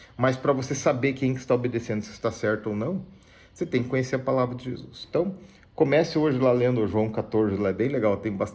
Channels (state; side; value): identical; both; correlation 1.00